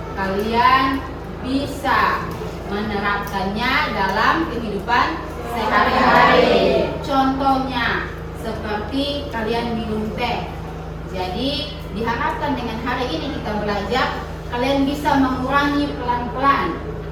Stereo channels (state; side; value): identical; both; correlation 1.00